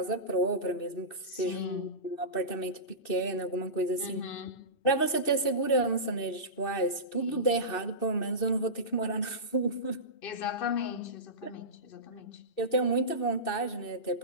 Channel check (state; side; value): late; right; 2.6 ms